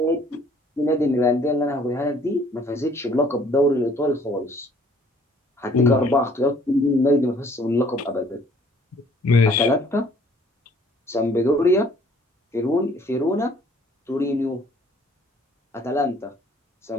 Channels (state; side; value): normal; both; correlation 0.58